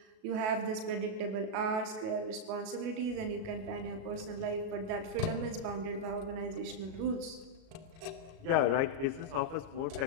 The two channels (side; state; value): left; late; 37 ms